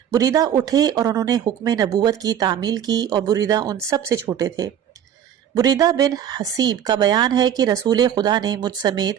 بریدہ اٹھے اور انہوں نے حکم نبوت کی تعمیل کی، اور بریدہ ان سب سے چھوٹے تھے۔ بریدہ بن حسیب کا بیان ہے کہ رسول خدا نے مجھ سمیت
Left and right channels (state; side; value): quieter; left; 9.6 dB